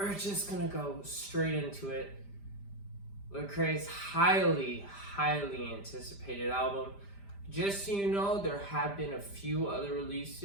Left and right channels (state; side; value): late; right; 5.0 ms